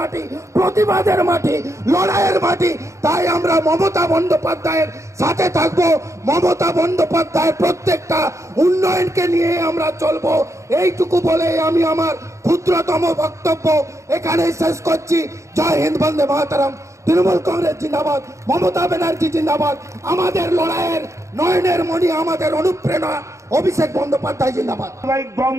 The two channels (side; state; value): left; late; 0.14 ms